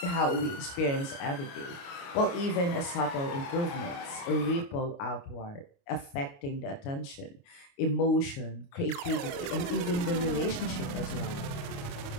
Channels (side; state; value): right; late; 29 ms